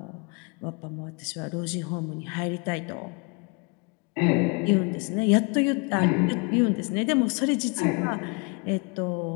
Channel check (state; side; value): quieter; right; 32.3 dB